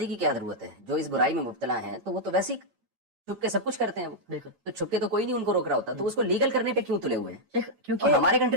کی کیا ضرورت ہے؟ جو اس برائی میں مبتلا ہیں تو وہ تو ویسے ہی چھپ کے سب کچھ کرتے ہیں. وہ بالکل. تو چھپ کے تو کوئی نہیں ان کو روک رہا ہوتا، تو اس کو لیگل کرنے پہ کیوں تلے ہوئے ہیں؟ کیونکہ اور ہمارے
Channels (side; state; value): left; late; 8.9 ms